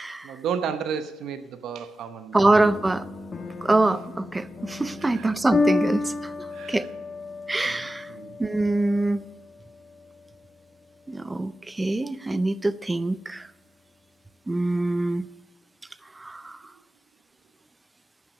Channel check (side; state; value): both; normal; correlation 0.93